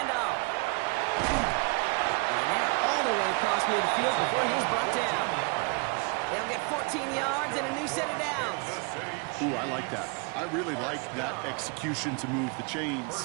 And they're all the way across midfield before he's brought down. They'll get 14 yards and a new set of downs. Ooh, I like that. I really like that execution to move the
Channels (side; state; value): left; quieter; 32.6 dB